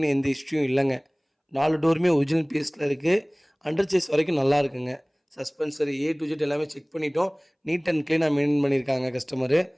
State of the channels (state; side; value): identical; both; correlation 1.00